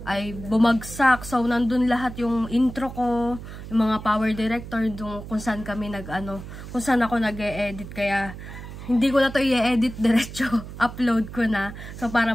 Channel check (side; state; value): right; noise; hum, 12 dB below the sound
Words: ay bumagsak. So, nandun lahat yung intro ko, yung mga power director, kung saan kami kung saan ako nag-e-edit. Kaya, hindi ko na to i-edit, diretso upload ko na. So, para